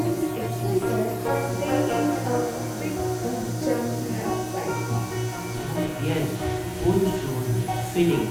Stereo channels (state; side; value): identical; both; correlation 1.00